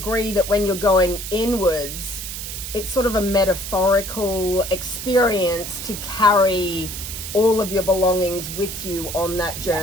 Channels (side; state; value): right; noise; hiss, 7 dB below the sound